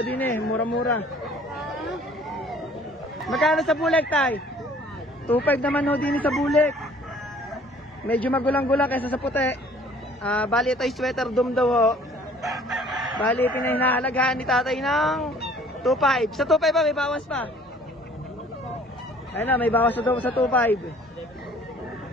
din eh. Mura-mura. Magkano sa bulik, tay? 2.5 naman ho din sa bulik. Medyo magulang-gulang kaysa sa puti. Bali ito ay sweater dome daw ho. Bali pinahinahalagaan ni tatay ng 2.5. Sa 2.5 ba may bawas pa? Ayun na, may bawas na daw sa 2.5.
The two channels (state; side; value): normal; both; correlation 0.54